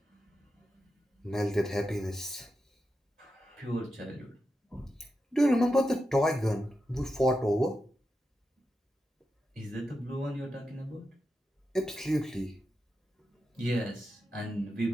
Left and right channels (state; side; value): normal; both; correlation 0.88